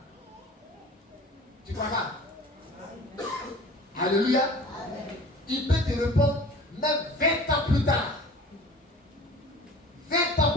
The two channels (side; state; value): both; normal; correlation 0.43